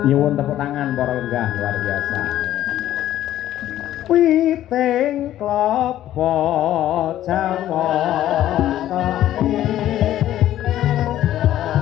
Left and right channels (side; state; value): right; quieter; 12.8 dB